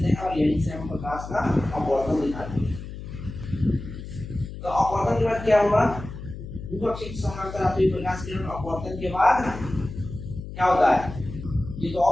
हैं और यहीं से हम प्रकाश का अपवर्तन दिखाते हैं। तो अपवर्तन के बाद क्या होगा, विपक्षी के समांतर आती हुई प्रकाश किरण अपवर्तन के बाद क्या होता है, ये तो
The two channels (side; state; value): left; noise; hum, 10 dB below the sound